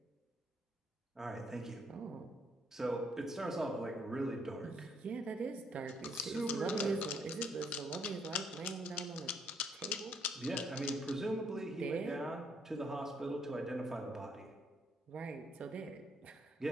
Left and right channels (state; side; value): normal; both; correlation 0.70